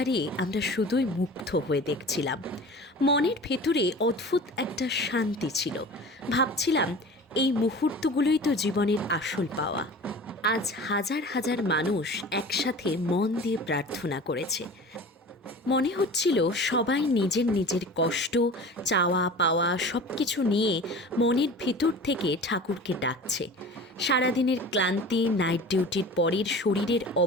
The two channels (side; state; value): both; normal; correlation 0.38